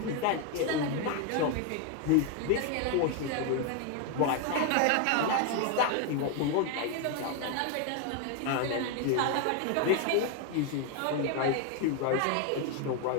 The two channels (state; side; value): different; both; correlation 0.01